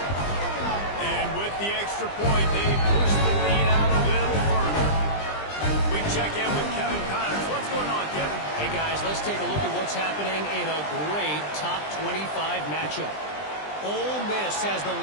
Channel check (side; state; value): right; late; 20 ms